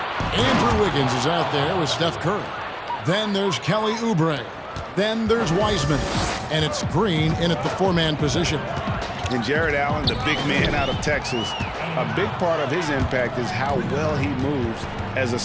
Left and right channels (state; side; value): identical; both; correlation 1.00